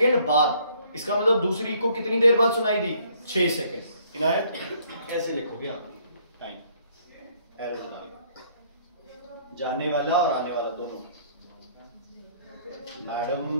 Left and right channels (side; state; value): both; inverted; correlation -0.63